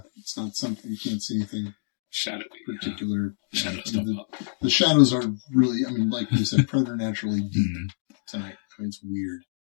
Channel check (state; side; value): silent; right; digital silence